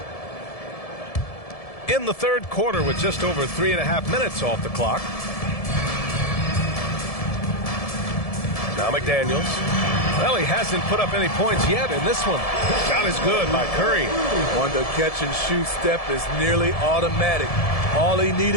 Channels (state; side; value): late; right; 1.7 ms